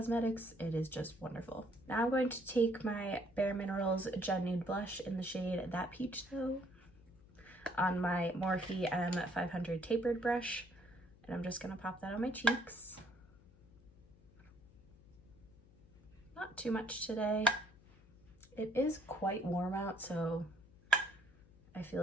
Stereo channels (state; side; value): noise; left; hum, 25 dB below the sound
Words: It is just wonderful. Now I'm going to take my Bare Minerals Gen Nude Blush in the shade That Peach Though on my Morphe M500 tapered brush, and I'm just gonna pop that on my cheeks. Not too much today. It is quite warm out, so I feel